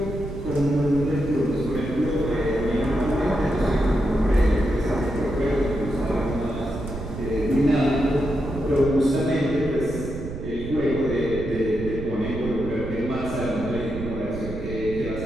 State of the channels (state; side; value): noise; right; rumble, 8 dB below the sound